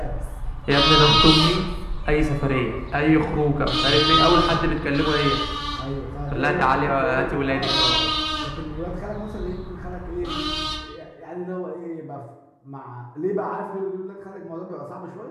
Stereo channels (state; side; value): identical; both; correlation 1.00